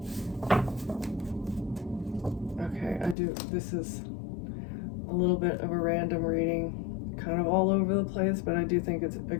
Okay, this is a little bit of a random reading, kind of all over the place, but I do think it's,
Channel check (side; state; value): right; drops out; at 3.2 s